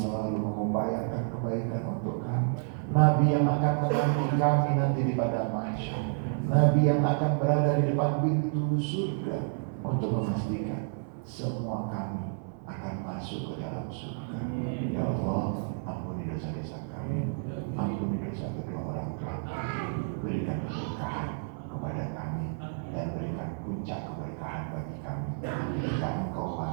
mengupayakan kebaikan untuk kami, Nabi yang akan menanti kami nanti di padang mahsyar, Nabi yang akan berada di depan pintu surga untuk memastikan semua kami akan masuk ke dalam surga. Ya Allah, ampuni dosa-dosa kami, ampuni dosa kedua orang tua kami, berikan keberkahan kepada kami dan berikan puncak keberkahan bagi kami. Jika Engkau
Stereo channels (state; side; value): silent; left; 58 dB below the other